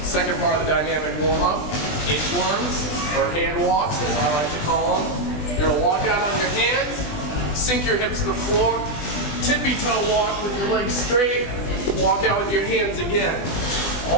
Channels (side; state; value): right; late; 20 ms